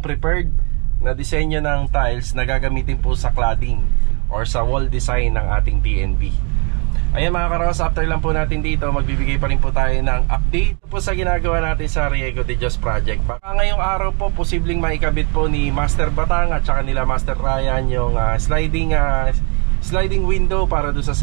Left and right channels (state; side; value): quieter; left; 35.2 dB